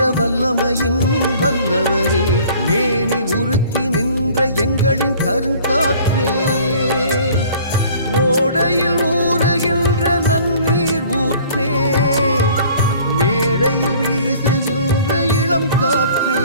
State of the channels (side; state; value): both; inverted; correlation -0.51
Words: வல்லமையின் வல்லவரே, மேனி உருக்கி நின்ற எங்களின் கருங்காற்றே, ஓடையில் ஊறுகின்ற நன்னீர் ஊற்றே, மேடையில் வீசுகின்ற இளம் காற்றே,